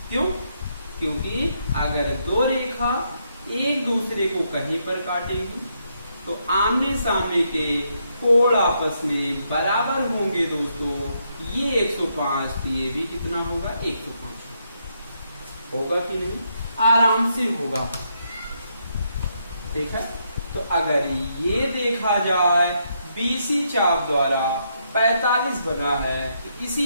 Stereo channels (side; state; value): both; inverted; correlation -0.77